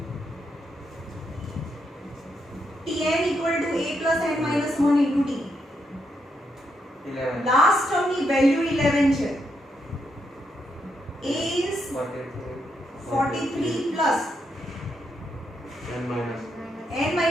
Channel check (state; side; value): normal; both; correlation 0.80